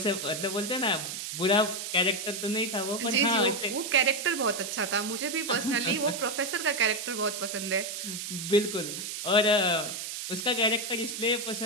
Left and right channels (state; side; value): noise; right; hiss, 6 dB below the sound